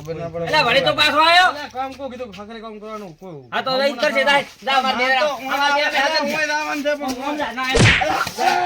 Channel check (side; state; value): both; identical; correlation 1.00